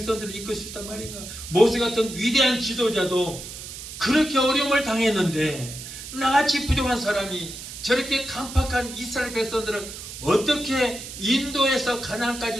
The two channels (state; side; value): noise; right; hiss, 11 dB below the sound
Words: 이끌 수 있단 말인가? 모세 같은 위대한 지도자도 그렇게 어려움을 당했는데 나같이 부족한 사람이 저렇게 강팍한 이스라엘 백성들을 어떻게 인도해서